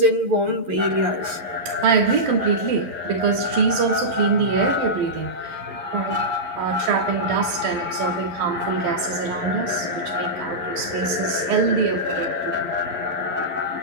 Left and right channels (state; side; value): late; left; 12 ms